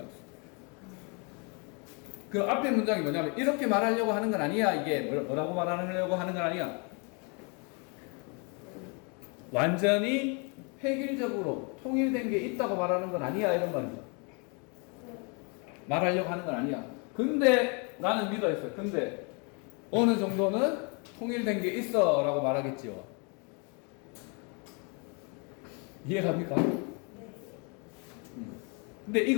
그 앞에 문장이 뭐냐면 이렇게 말하려고 하는 건 아니야. 이게 뭐라고 말하려고 하는 건 아니야. 완전히 획일적으로 통일된 게 있다고 말하는 건 아니야. 이런 말이죠. 말하려고 하는 건 아니야. 근데 나는 믿어있어. 근데 어느 정도는 통일된 게 있어 라고 말하겠지요. 이해갑니까? 근데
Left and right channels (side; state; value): right; quieter; 34.1 dB